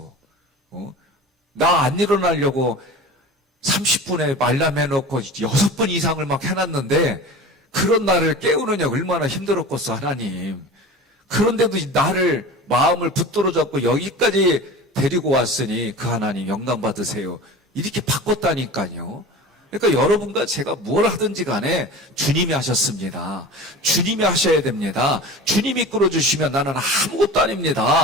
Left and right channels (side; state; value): both; normal; correlation 0.35